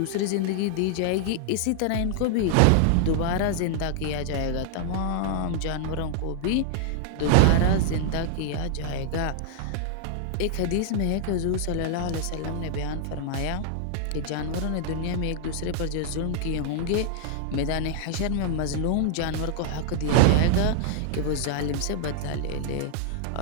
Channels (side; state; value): both; different; correlation -0.01